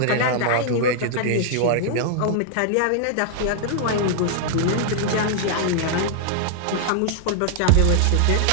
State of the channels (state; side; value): different; both; correlation -0.01